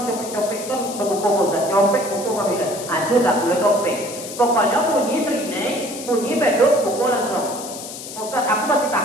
copek-copek kan berbuka Ustaz. Copek buku kau bilang, aja tak boleh copek. Pokoknya bunyi serinai, bunyi beduk, buku langsung. Ustaz, aku masih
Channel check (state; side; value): noise; left; hiss, 11 dB below the sound